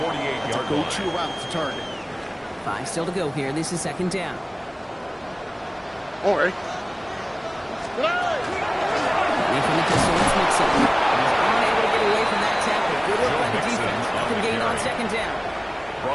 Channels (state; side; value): identical; both; correlation 1.00